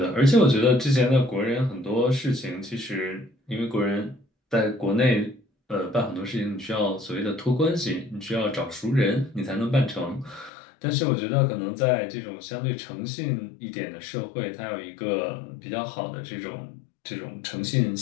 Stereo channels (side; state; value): right; drops out; at 10.5 s